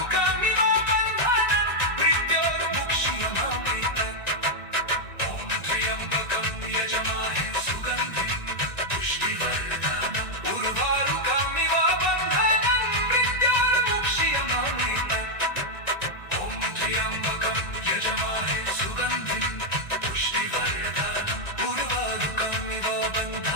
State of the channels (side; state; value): right; late; 1.9 ms